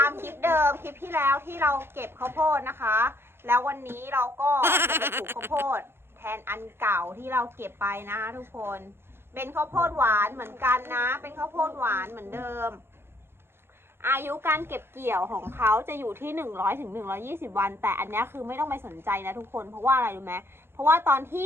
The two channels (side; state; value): left; late; 0.11 ms